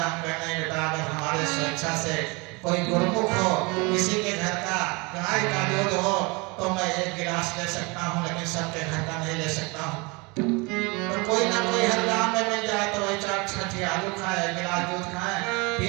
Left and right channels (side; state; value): left; quieter; 27.5 dB